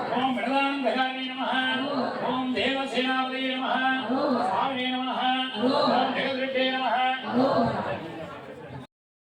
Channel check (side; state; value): both; identical; correlation 1.00